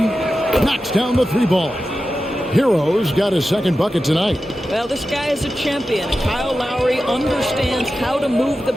Knocks down the 3 ball. Hero's got his second bucket tonight. Well, this guy is a champion. Kyle Lowry understands how to move the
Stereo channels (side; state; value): both; normal; correlation 0.92